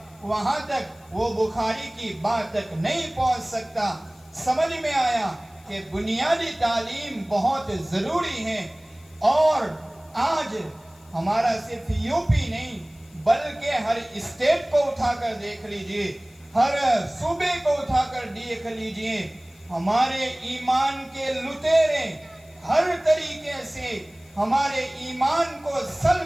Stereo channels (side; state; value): left; noise; hiss, 28 dB below the sound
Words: وہاں تک وہ بخاری کی بات تک نہیں پہنچ سکتا. سمجھ میں آیا کہ بنیادی تعلیم بہت ضروری ہے. اور آج ہمارا صرف یوپی نہیں بلکہ ہر اسٹیٹ کو اٹھا کر دیکھ لیجئے، ہر صوبے کو اٹھا کر دیکھ لیجئے، ہمارے ایمان کے لٹیرے ہر طریقے سے ہمارے ایمان کو